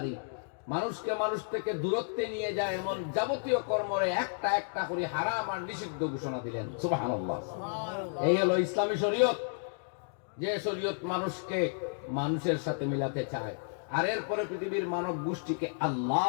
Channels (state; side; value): silent; right; digital silence